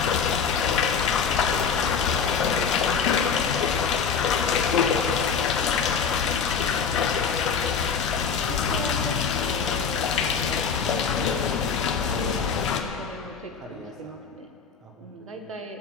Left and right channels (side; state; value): right; quieter; 6.2 dB